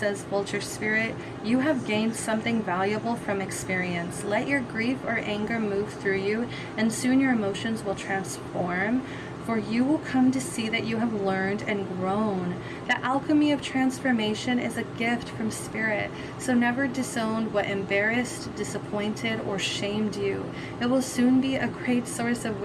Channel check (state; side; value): identical; both; correlation 1.00